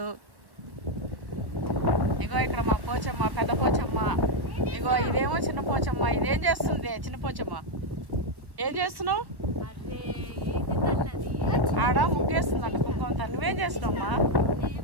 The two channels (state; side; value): late; left; 1.3 ms